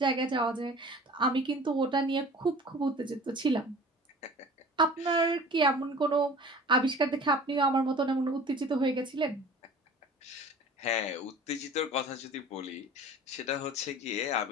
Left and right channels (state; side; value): normal; both; correlation 0.43